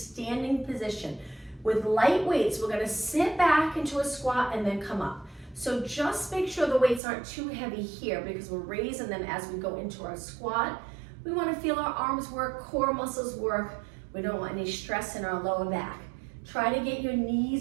position. With light weights, we're gonna sit back into a squat and then come up. So just make sure the weights aren't too heavy here because we're raising them as we go into our squat. We want to feel our arms work, core muscles work. We don't want any stress in our lower back. Try to get your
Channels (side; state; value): left; drops out; at 7.0 s